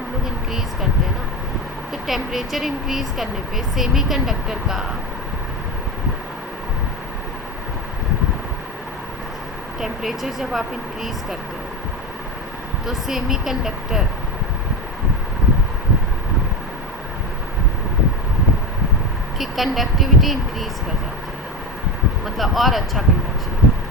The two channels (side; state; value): both; normal; correlation 0.20